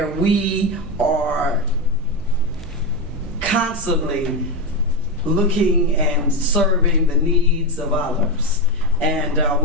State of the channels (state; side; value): normal; both; correlation 0.10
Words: we are constantly looking and serving the needs of others. And